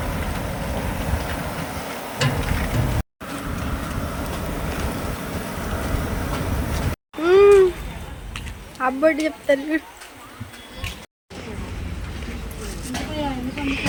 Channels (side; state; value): both; identical; correlation 1.00